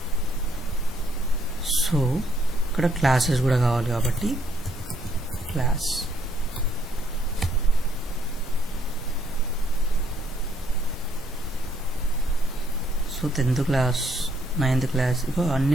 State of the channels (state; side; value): normal; both; correlation 0.69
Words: So ఇక్కడ క్లాసెస్ కూడా కావాలి కాబట్టి class. So 10th class, 9th class, ఇక